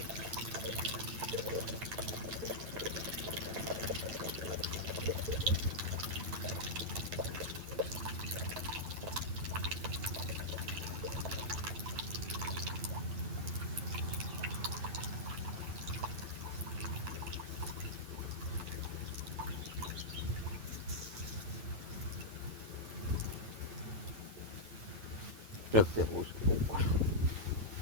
रखते हो उसके ऊपर।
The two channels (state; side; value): late; left; 9.0 ms